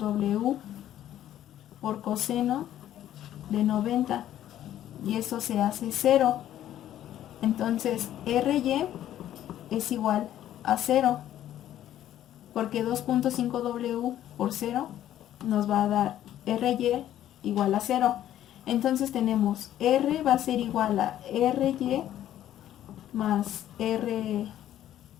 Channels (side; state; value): right; quieter; 12.0 dB